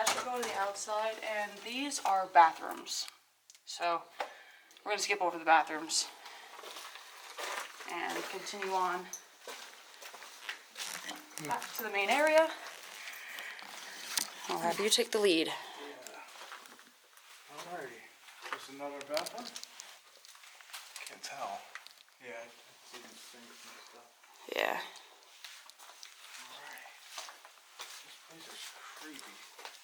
should go to the outside, and these are bathrooms. So we're gonna skip over the bathrooms and continue on back to the main area. I'll have you take the lead. Yeah. Alrighty. There's another bathroom? Can't tell. Yeah, I see the sinks and stuff. Yeah. Alright. This place is creepy.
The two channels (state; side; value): identical; both; correlation 1.00